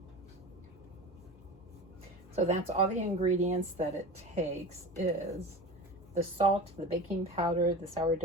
So that's all the ingredients that it takes is the salt, the baking powder, the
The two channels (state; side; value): normal; both; correlation 0.31